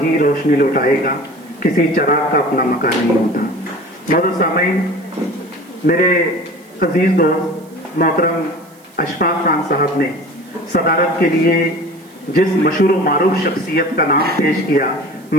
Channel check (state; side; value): noise; right; hiss, 29 dB below the sound